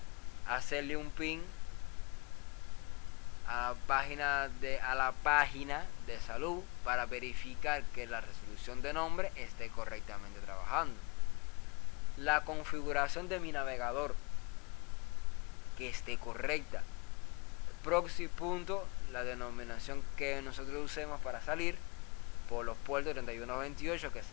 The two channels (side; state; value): right; quieter; 30.0 dB